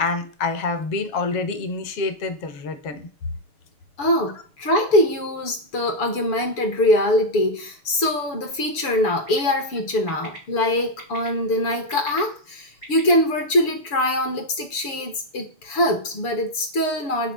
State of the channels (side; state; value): right; late; 6.9 ms